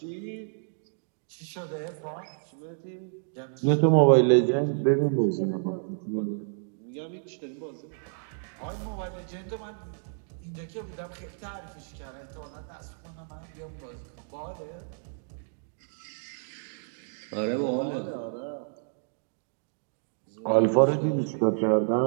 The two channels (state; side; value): silent; left; digital silence